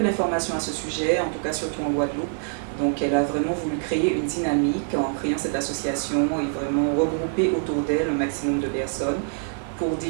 d'informations à ce sujet, en tout cas surtout en Guadeloupe, donc elle a vraiment voulu créer une dynamique en créant cette association et vraiment regrouper autour d'elle un maximum de personnes pour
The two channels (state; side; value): silent; left; digital silence